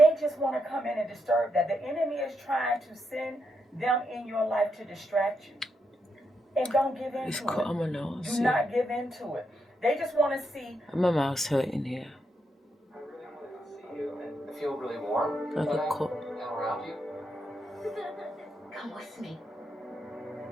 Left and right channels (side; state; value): both; normal; correlation 0.81